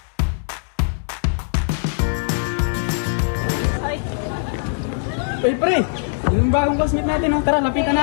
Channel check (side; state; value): right; silent; digital silence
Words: Hey pre, yung bagong classmate natin, oh. Tara, lapitan